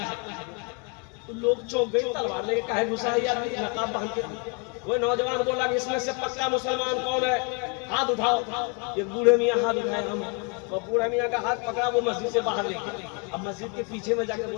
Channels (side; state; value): right; quieter; 35.4 dB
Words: तो लोग चौंक गए, तलवार लेके काहे घुसा है यार नकाब बांध के। वो नौजवान बोला कि इसमें से पक्का मुसलमान कौन है, हाथ उठाओ। ये बूढ़े मियाँ हाथ उठाए, हम और बूढ़े मियाँ का हाथ पकड़ा, वो मस्जिद से बाहर लेके अब मस्जिद के पीछे में जाकर